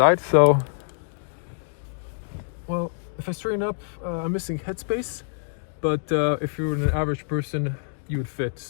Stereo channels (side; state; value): right; silent; digital silence